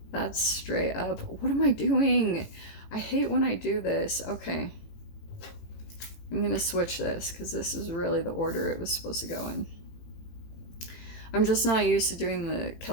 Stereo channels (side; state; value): right; late; 18 ms